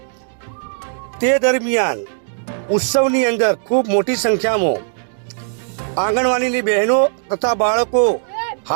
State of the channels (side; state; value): left; silent; digital silence